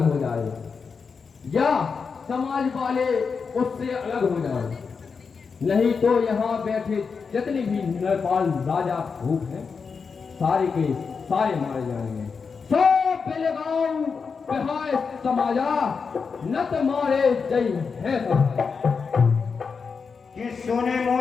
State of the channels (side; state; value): right; quieter; 5.4 dB